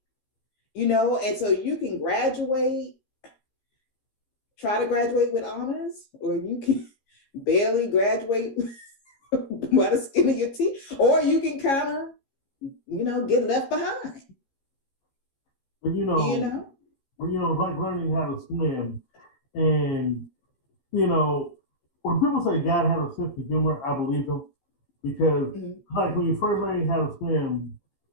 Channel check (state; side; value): late; right; 15 ms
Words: and so you can graduate, try to graduate with honors, or you can barely graduate by the skin of your teeth, or you can kind of, get left behind. But it's like learning how to swim. And, when people say God has a sense of humor, I believe them. Because, like, when you first learn how to swim,